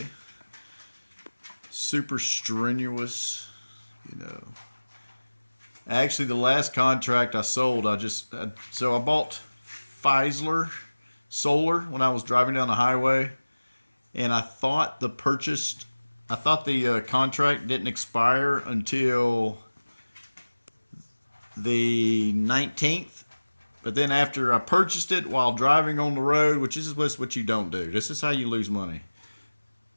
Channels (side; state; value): both; inverted; correlation -1.00